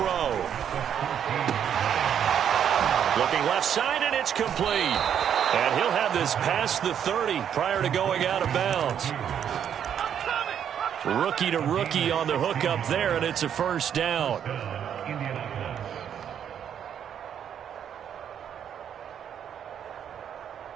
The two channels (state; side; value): quieter; left; 8.9 dB